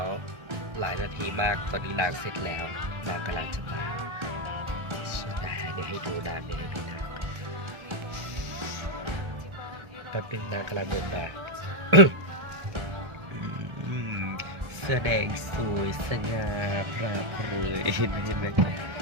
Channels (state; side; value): late; left; 1.4 ms